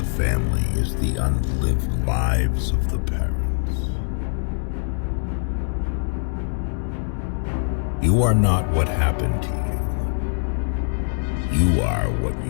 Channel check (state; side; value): silent; right; digital silence